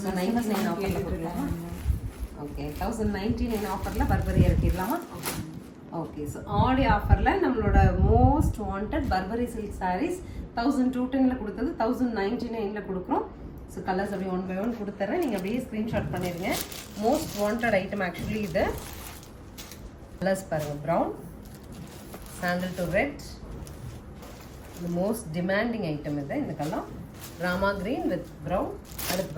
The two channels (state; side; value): identical; both; correlation 1.00